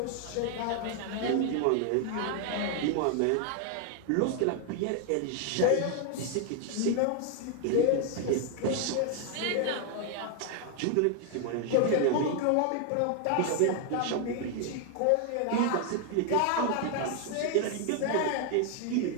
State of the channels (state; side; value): different; both; correlation 0.00